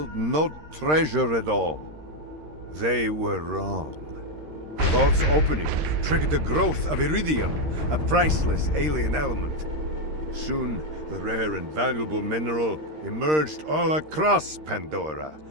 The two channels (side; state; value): left; late; 13 ms